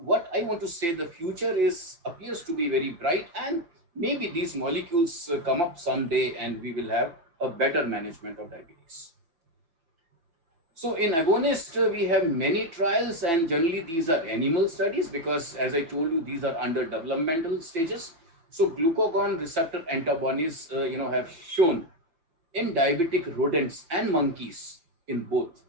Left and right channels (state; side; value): late; left; 5.9 ms